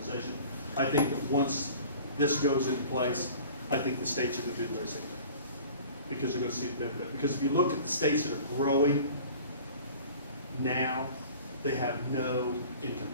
I think that once this goes into place, I think the states are going to do the very same thing. Because they're going to see the benefit. Because if you look at the states that are growing now, they have no income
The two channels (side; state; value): both; inverted; correlation -0.44